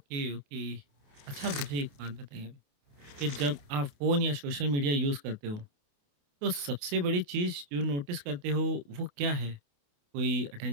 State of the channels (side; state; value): left; late; 28 ms